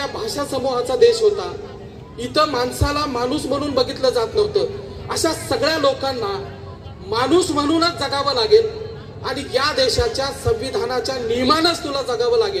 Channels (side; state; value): both; identical; correlation 1.00